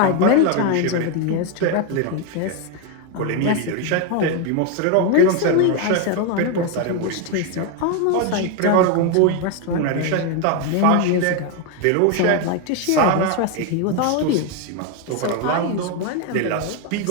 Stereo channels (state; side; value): different; both; correlation 0.01